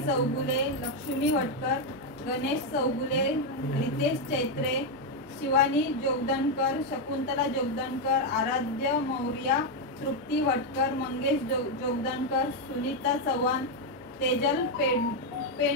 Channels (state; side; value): noise; left; hum, 29 dB below the sound